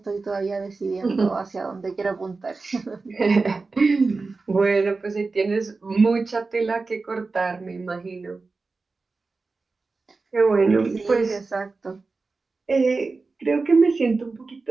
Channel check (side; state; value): left; quieter; 3.9 dB